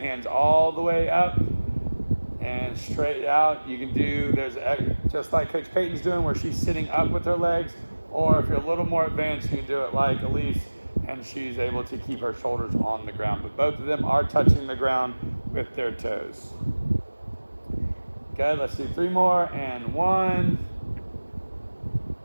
all the way up and straight out. You can do, just like Coach Peyton's doing, where she's sitting up with her legs. Or if you're a little more advanced, you can do it like Elise, and she's able to keep her shoulders on the ground. But both of them are touching the ground with their toes. Good, let's do 3 more. And 1,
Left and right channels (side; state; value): both; inverted; correlation -1.00